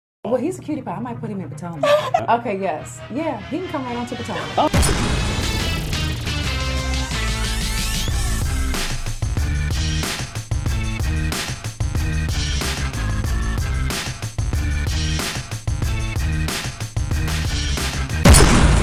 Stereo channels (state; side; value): identical; both; correlation 1.00